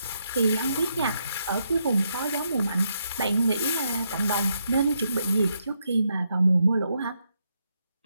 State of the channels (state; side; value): inverted; both; correlation -0.78